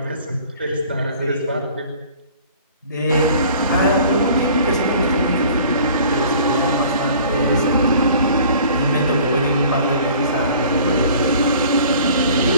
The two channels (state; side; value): inverted; both; correlation -0.50